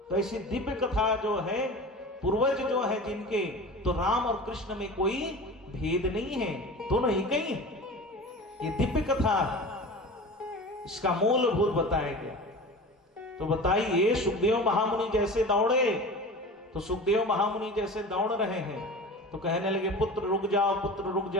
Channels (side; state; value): both; normal; correlation 0.35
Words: तो ऐसी दिव्य कथा जो है, पूर्वज जो है जिनके, तो राम और कृष्ण में कोई भेद नहीं है, दोनों ही कहीं है। ये दिव्य कथा है, इसका मूलभूत बताया गया। तो बताइए, सुखदेव महामुनि जैसे दौड़े, तो सुखदेव महामुनि जैसे दौड़ रहे हैं, तो कहने लगे पुत्र रुक जाओ, पुत्र रुक